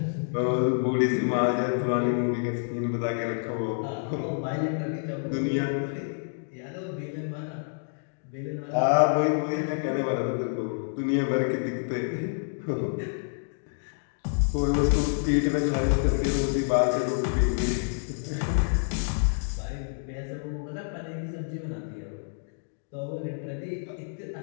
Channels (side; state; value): right; silent; digital silence